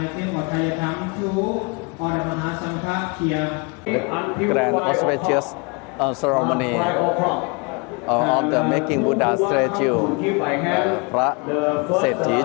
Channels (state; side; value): quieter; right; 31.3 dB